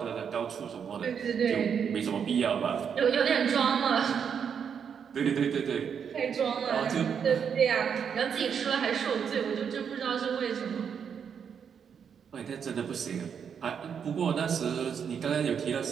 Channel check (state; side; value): quieter; left; 7.3 dB